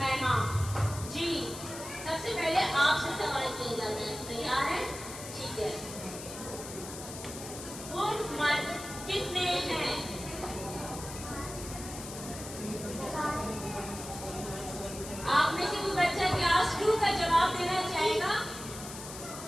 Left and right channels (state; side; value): noise; left; hiss, 11 dB below the sound